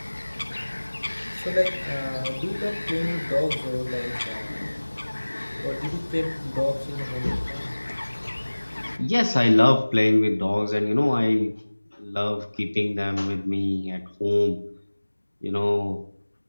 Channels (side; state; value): both; inverted; correlation -1.00